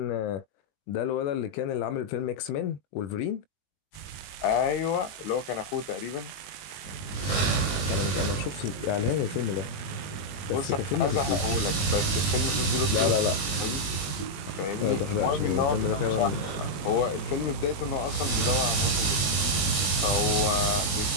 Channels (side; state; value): right; late; 21 ms